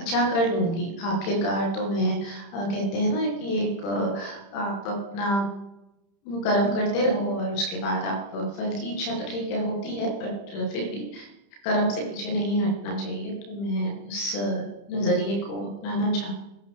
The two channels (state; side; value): late; right; 30 ms